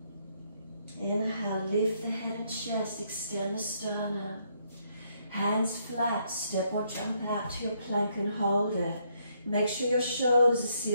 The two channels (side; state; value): both; inverted; correlation -0.72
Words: Inhale, lift the head and chest, extend the sternum. Hands flat, step or jump out to your plank and hold it. Make sure your shoulders are